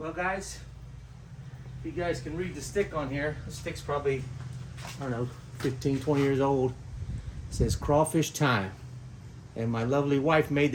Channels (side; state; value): both; identical; correlation 1.00